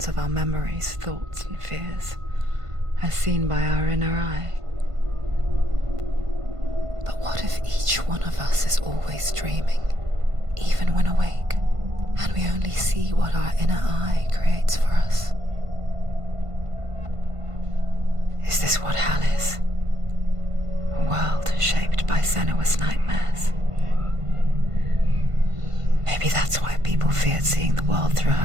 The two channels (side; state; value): left; late; 1.5 ms